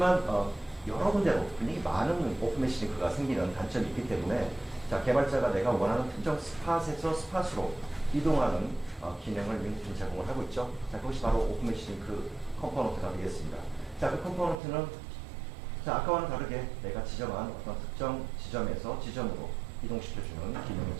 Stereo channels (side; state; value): left; drops out; at 14.6 s